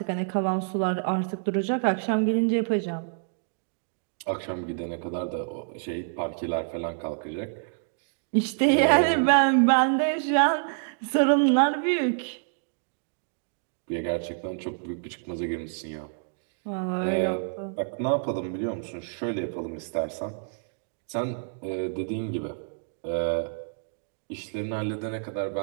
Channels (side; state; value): left; silent; digital silence